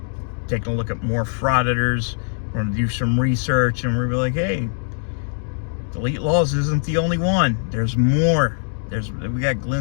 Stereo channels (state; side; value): silent; right; digital silence